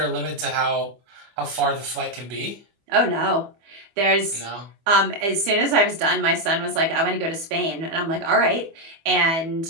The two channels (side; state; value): left; late; 25 ms